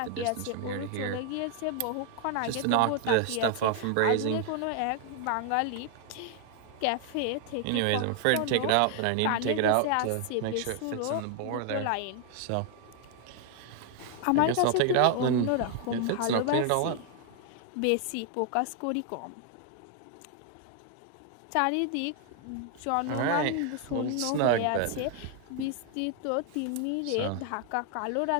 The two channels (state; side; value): different; both; correlation 0.00